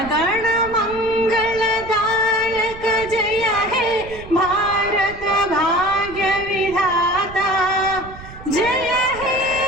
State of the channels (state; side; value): noise; right; rumble, 16 dB below the sound